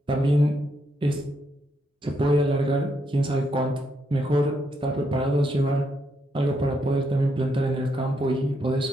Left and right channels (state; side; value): normal; both; correlation 0.78